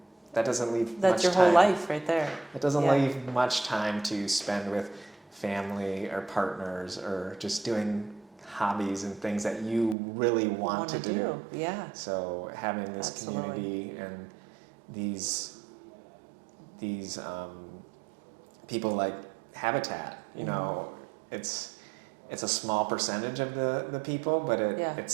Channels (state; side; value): drops out; left; at 10.0 s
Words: that doesn't leave much time. That's your whole life right there. It doesn't leave much time to spend with family or partners or just doing hobbies and things that you really want to do. Yeah. So having this community and these people like Habitat, it's a small percentage of the people, but it's